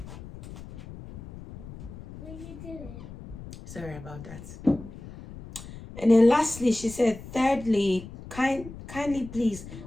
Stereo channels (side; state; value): left; noise; rumble, 14 dB below the sound